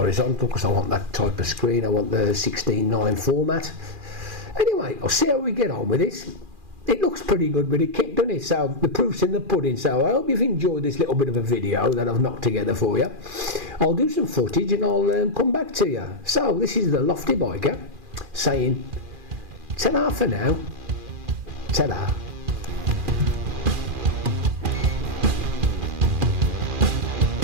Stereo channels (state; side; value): late; left; 2.4 ms